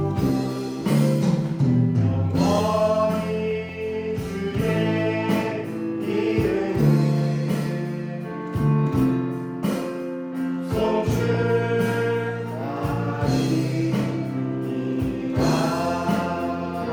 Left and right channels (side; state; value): both; identical; correlation 1.00